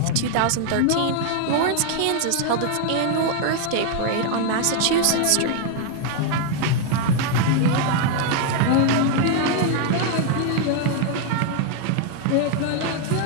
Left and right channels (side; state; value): both; different; correlation 0.00